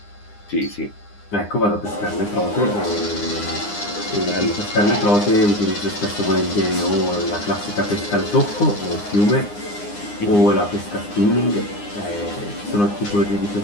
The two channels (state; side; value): late; right; 9.8 ms